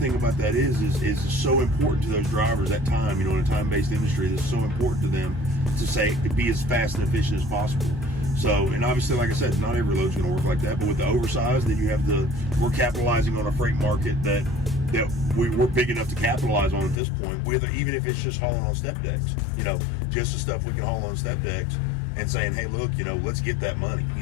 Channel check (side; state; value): right; drops out; at 17.0 s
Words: about that is so important to those drivers at time, in a time-based industry, it's so important to them to be as fast and efficient as possible. So, and obviously, like I said, not every load's going to work like that. But with the oversized, then you have we're capitalizing on a freight market that we're big enough to capitalize on at this point. Even if it's just hauling on step decks, just the stuff we can haul on step decks, and saying, hey, look, let's get that money.